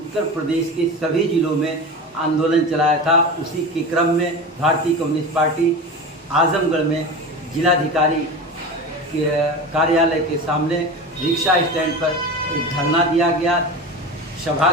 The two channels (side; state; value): both; normal; correlation 0.28